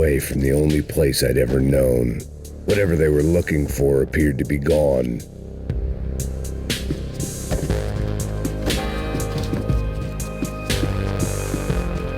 from the only place I'd ever known. Whatever they were looking for appeared to be gone.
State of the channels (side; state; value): both; identical; correlation 1.00